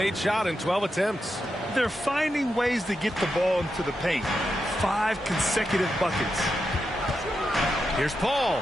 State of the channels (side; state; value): both; normal; correlation 0.87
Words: shot in 12 attempts. They're finding ways to get the ball into the paint. 5 consecutive buckets. Here's Paul.